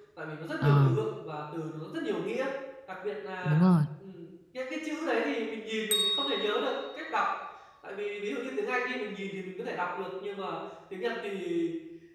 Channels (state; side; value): identical; both; correlation 1.00